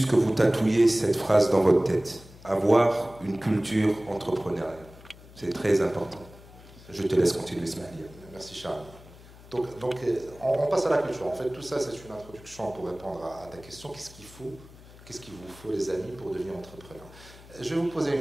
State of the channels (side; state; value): left; noise; hum, 21 dB below the sound